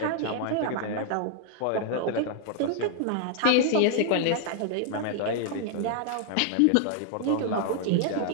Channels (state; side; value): different; both; correlation 0.00